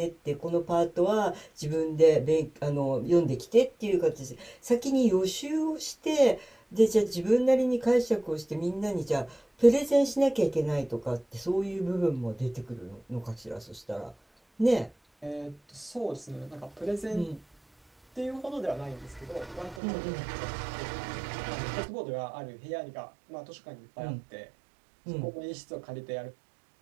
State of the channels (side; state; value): left; drops out; at 19.8 s